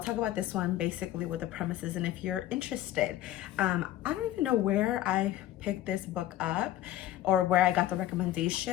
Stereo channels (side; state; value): right; quieter; 13.2 dB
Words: talk about this one basically with the premises, and if you're interested. I don't even know where I picked this book up or where I got the